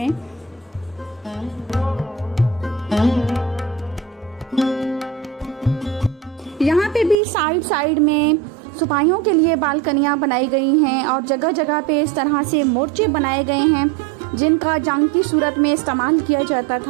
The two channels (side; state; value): left; drops out; at 7.2 s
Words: यहाँ पे भी साइड साइड में सिपाहियों के लिए बालकनियां बनाई गई हैं और जगह जगह पे इस तरह से मोर्चे बनाए गए हैं जिनका जंग की सूरत में इस्तेमाल किया जाता